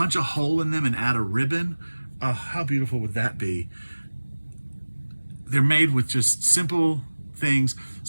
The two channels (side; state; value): both; inverted; correlation -1.00